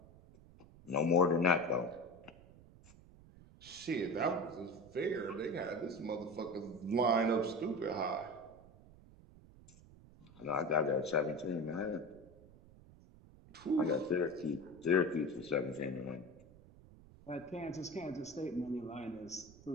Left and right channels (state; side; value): noise; right; rumble, 22 dB below the sound